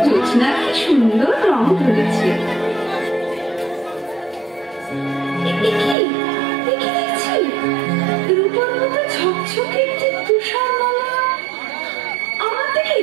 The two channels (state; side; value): drops out; left; at 6.0 s